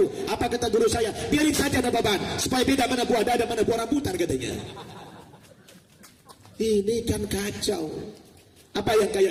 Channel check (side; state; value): both; identical; correlation 1.00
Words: Apa kata guru saya? Biarin saja ada beban, supaya beda mana buah dada, mana buah rambutan katanya. Ini kan kacau. Apa yang